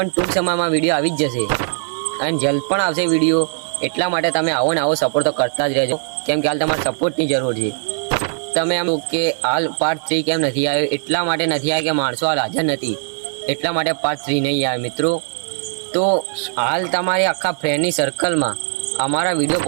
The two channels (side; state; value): left; silent; digital silence